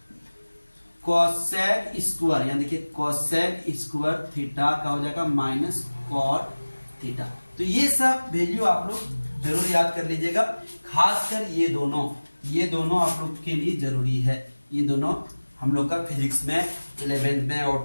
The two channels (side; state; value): both; inverted; correlation -1.00